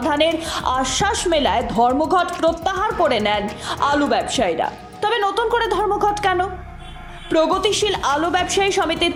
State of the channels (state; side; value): identical; both; correlation 1.00